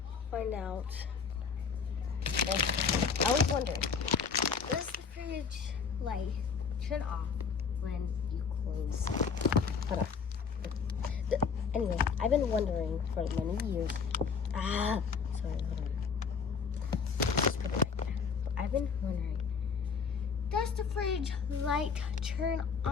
find out, I was wondering, does the fridge light turn off when you close? Hold on. Anyway, I've been wondering for many years, sorry, hold on. Just put it right there. I've been wondering, does the fridge light turn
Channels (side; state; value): right; quieter; 5.8 dB